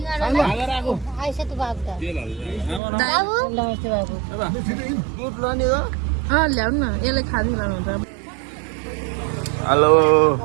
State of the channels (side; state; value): left; drops out; at 2.8 s